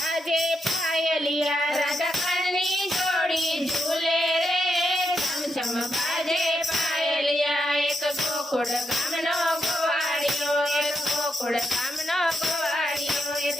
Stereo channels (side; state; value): both; normal; correlation 0.83